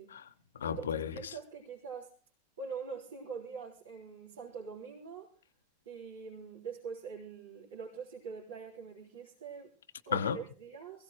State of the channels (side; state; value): both; normal; correlation -0.15